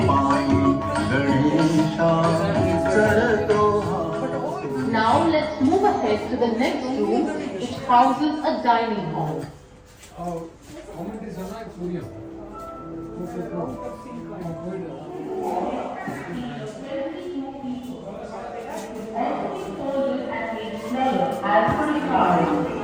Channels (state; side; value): identical; both; correlation 1.00